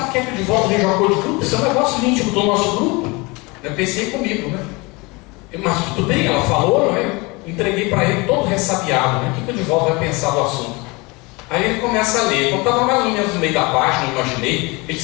quer que o Divaldo veja um acordo de grupo? Isso é um negócio íntimo do nosso grupo. Eu pensei comigo, né? Mas tudo bem, ela falou, não é? Entreguei para ele todo ressabiado, né? O que o Divaldo vai pensar do assunto? Aí ele começa a ler. Quando estava mais ou menos no meio da página, eu imaginei, ele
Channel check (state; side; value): quieter; right; 25.9 dB